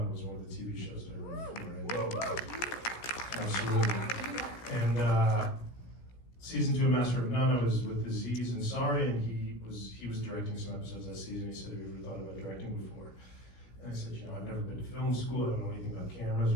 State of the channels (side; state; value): right; late; 17 ms